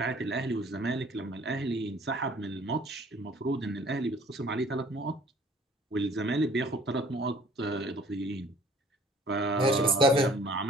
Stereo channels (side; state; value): both; normal; correlation 0.54